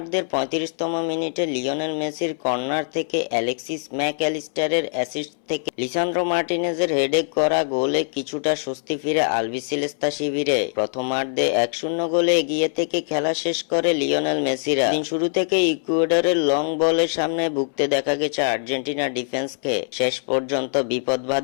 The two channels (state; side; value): silent; right; 64 dB below the other